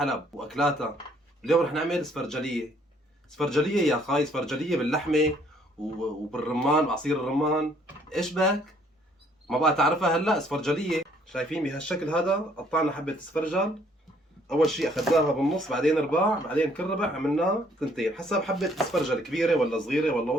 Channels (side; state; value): both; normal; correlation 0.63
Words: واكلاتها. اليوم رح نعمل سفرجليه. سفرجليه يا خاي، سفرجليه باللحمه وبالرمان وعصير الرمان. ايش بك؟ ما بقى تعرفها هلا؟ سفرجليه شايفين بهالشكل هذا. قطعنا حبه سفرجل، اول شيء اخذناها بالنص، بعدين رباع، بعدين كل ربع عملناه ثنتين حسب حبه السفرجل، كبيره ولا صغيره ولا